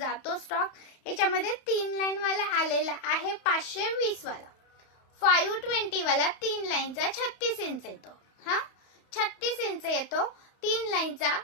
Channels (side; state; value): right; late; 31 ms